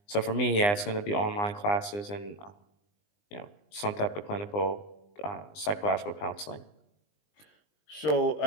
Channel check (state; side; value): late; right; 20 ms